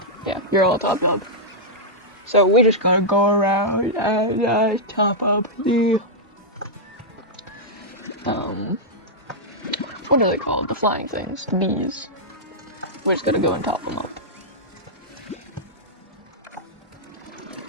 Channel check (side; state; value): both; normal; correlation -0.09